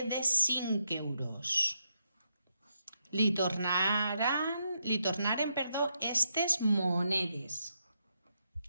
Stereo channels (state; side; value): inverted; both; correlation -0.81